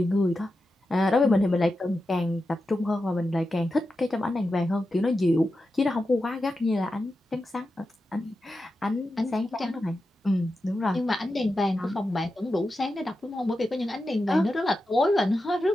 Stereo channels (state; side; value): normal; both; correlation 0.90